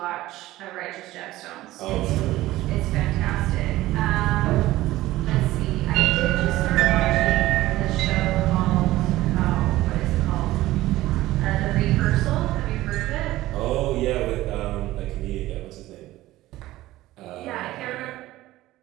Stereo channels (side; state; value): left; quieter; 16.5 dB